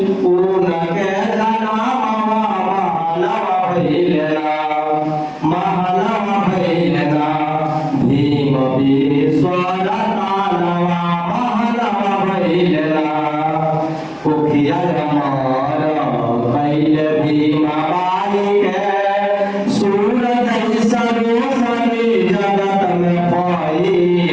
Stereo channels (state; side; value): identical; both; correlation 1.00